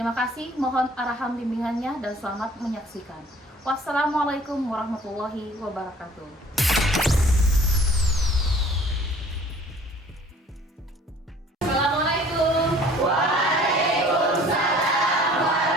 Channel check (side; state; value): both; normal; correlation 0.52